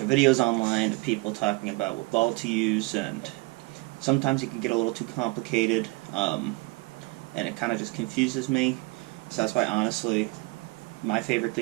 videos online of people talking about what ball to use, and sometimes it can get a little too complicated, and it kind of just confuses me. So that's why honestly my favorite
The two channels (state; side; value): quieter; left; 25.6 dB